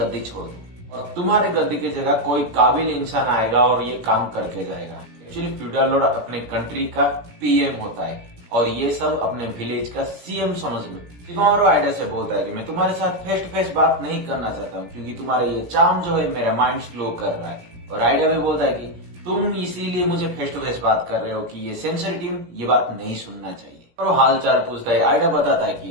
छोड़ दो और तुम्हारे गद्दी की जगह कोई काबिल इंसान आएगा और ये काम करके जाएगा। एक्चुअली फ्यूडल लॉर्ड अपने कंट्री का पीएम होता है और ये सब अपने विलेज का सीएम समझ लो। शिकामारू आइडा से बोलता है कि मैं तुम्हारे साथ फेस टू फेस बात नहीं करना चाहता हूँ क्योंकि तुम्हारा ये चार्म जो है मेरा माइंड स्लो कर रहा है। और आइडा भी बोलता है कि तुम इसीलिए मुझे फेस टू फेस बात कर रहे हो कि ये सेंसर टीम ये बात नहीं सुनना चाहिए। और वो हाल चाल पूछता है। आइडा बताता है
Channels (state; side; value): late; left; 17 ms